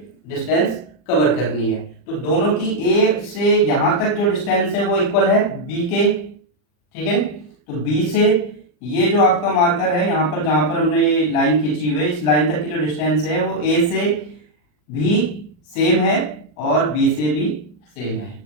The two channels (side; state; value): right; late; 40 ms